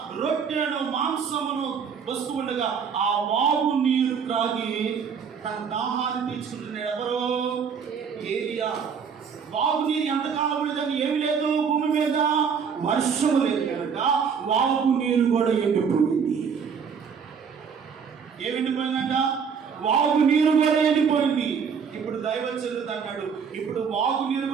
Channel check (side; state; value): left; quieter; 6.5 dB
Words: రొట్టెను మాంసమును వస్తూ ఉండగా ఆ వాగు నీరు త్రాగి తన దాహాన్ని తీర్చుకుంటున్నాడు. ఎవరు? ఏలియా. వాగు నీరు ఎంతకాలం ఉండదని ఏమి లేదు భూమి మీద, వర్షం లేదు కనుక వాగు నీరు కూడా ఎండిపోయింది. ఏమి ఎండిపోయిందంట? వాగు నీరు కూడా ఎండిపోయింది. ఇప్పుడు దైవజనుడు అన్నాడు, ఇప్పుడు వాగు నీరు